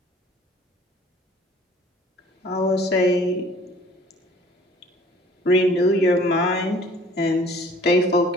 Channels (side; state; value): both; normal; correlation 0.52